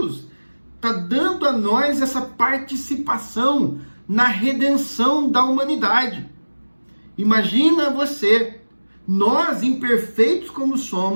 está dando a nós essa participação na redenção da humanidade. Imagina você, nós imperfeitos como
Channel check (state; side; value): inverted; both; correlation -1.00